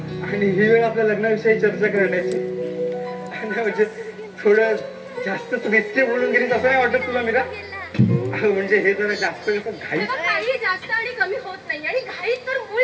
आणि ही वेळ आपल्या लग्नाविषयी चर्चा करण्याची आणि म्हणजे थोडं जास्तच रिस्की बोलून गेलीस असं नाही वाटत तुला मीरा म्हणजे हे जरा जास्त घाई तेव्हा काही जास्त आणि कमी होत नाही आणि घाई तर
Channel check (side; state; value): both; identical; correlation 1.00